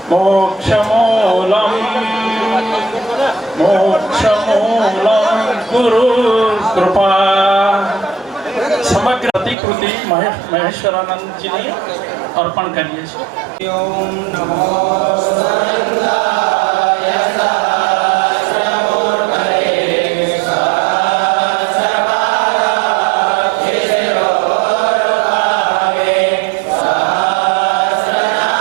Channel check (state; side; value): drops out; left; at 9.6 s